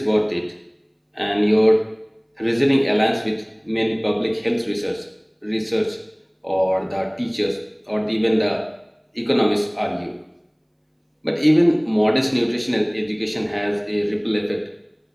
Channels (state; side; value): identical; both; correlation 1.00